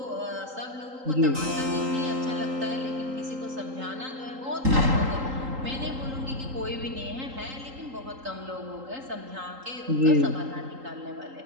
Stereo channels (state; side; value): late; left; 3.8 ms